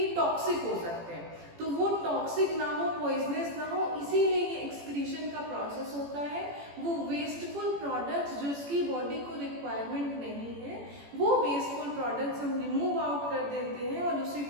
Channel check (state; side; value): late; left; 18 ms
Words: टॉक्सिक हो सकते हैं. तो वो टॉक्सिक ना हो, पॉइजनस ना हो, इसीलिए ये एक्सक्रीशन का प्रोसेस होता है. वो वेस्टफुल प्रोडक्ट्स जिसकी बॉडी को रिक्वायरमेंट नहीं है, वो वेस्टफुल प्रोडक्ट्स हम रिमूव आउट कर देते हैं और उसी